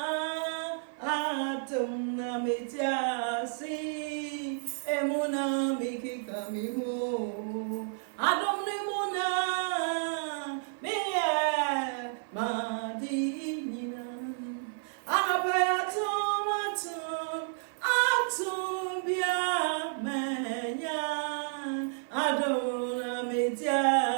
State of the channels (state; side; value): silent; left; 57 dB below the other